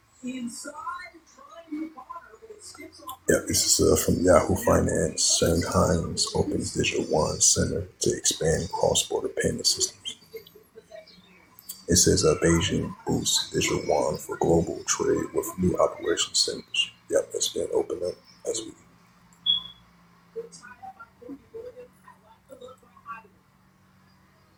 Yeah, this is from Yahoo Finance. Shanghai's opens Digital One Center to expand cross-border payment systems. It says Beijing boosts Digital One for global trade with new operation centers. Yep, that's been opened up as we.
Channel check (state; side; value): identical; both; correlation 1.00